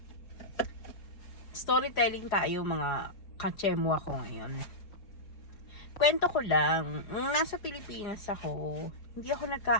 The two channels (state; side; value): late; right; 4.7 ms